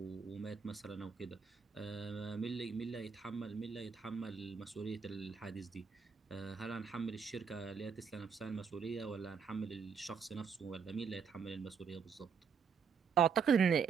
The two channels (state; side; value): quieter; left; 6.2 dB